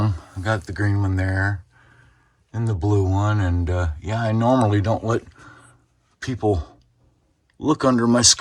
I got the green one there and the blue one, and I normally don't let people look under my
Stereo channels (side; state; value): both; identical; correlation 1.00